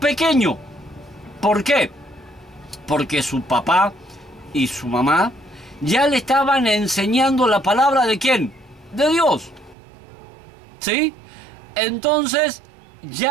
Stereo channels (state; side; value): drops out; left; at 9.8 s